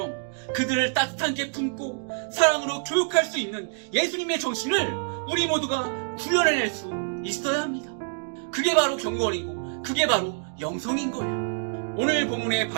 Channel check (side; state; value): left; silent; digital silence